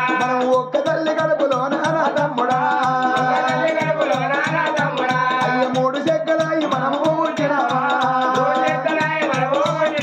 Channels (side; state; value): both; identical; correlation 1.00